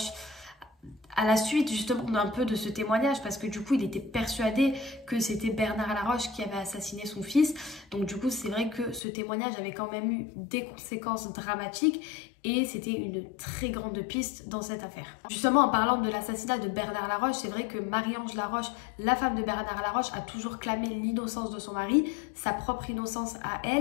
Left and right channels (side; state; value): right; drops out; at 9.0 s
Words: à la suite justement d'un peu de ce témoignage, parce que du coup il était persuadé que c'était Bernard Laroche qui avait assassiné son fils. Donc du coup c'est vrai que ce témoignage avait quand même eu des conséquences dramatiques et c'était une très grande piste dans cette affaire. Justement, en parlant de l'assassinat de Bernard Laroche, c'est vrai que Marie-Ange Laroche, la femme de Bernard Laroche, a toujours clamé l'innocence de son mari, sa propre innocence à